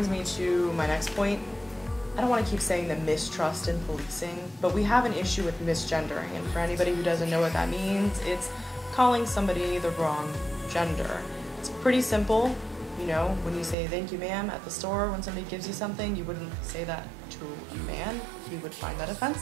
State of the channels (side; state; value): left; drops out; at 13.8 s